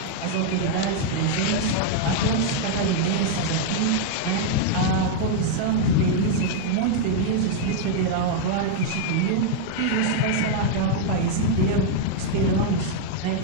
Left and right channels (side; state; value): both; different; correlation -0.01